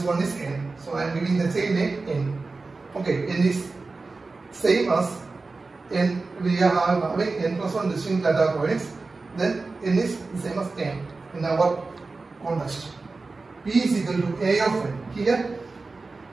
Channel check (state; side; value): quieter; left; 3.8 dB